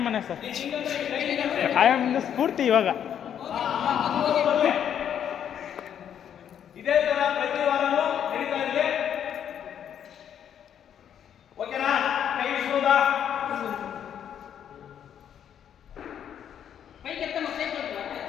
ಸರ್, ಆಯಮ್ಮನ ಸ್ಫೂರ್ತಿ ಇವಾಗ. ಇದೇ ತರ ಪ್ರತಿ ವಾರನೂ ನಡೀತಾ ಇದೆ. ಓಕೆನಾ? ಕೈ ಇಳಿಸ್ಬೋದಾ?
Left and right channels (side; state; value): right; quieter; 9.2 dB